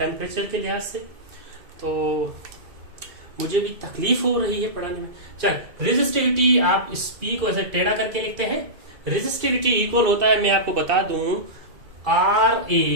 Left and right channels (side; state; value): left; late; 2.3 ms